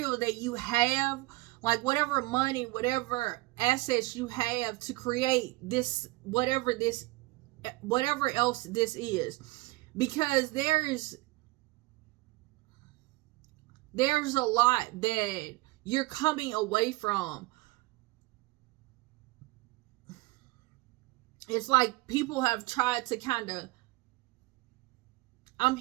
that you have, like whatever money, whatever assets you have to create this, whatever else this is, because there's a lot that you're coming away from. It's like people have tried to kind of, I'm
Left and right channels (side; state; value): left; quieter; 21.5 dB